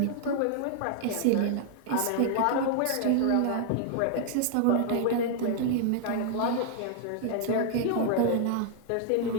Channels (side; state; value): both; different; correlation -0.01